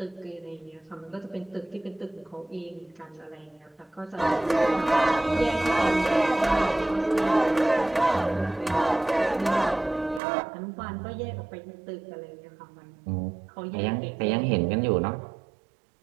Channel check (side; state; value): left; drops out; at 10.2 s